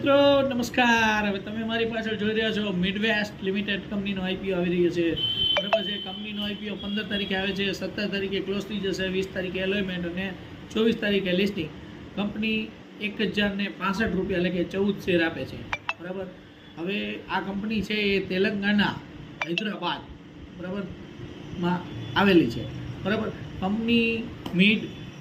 નમસ્કાર. હવે તમે મારી પાછળ જોઈ રહ્યા છો મિડવેસ્ટ લિમિટેડ કંપનીનો આઈપીઓ આવી રહ્યો છે. બરાબર છે. કંપનીનો આઈપીઓ 15 તારીખે આવે છે, 17 તારીખે ક્લોઝ થઈ જશે, 20 તારીખે એલોયમેન્ટ અને 24 તારીખે લિસ્ટિંગ. કંપની 1065 રૂપિયા એટલે કે 14 શેર આપે છે. બરાબર. હવે આ કંપની છે એ તેલંગાણા, હૈદરાબાદ બરાબર માં આવેલી છે. બરાબર. Company mid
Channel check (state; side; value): identical; both; correlation 1.00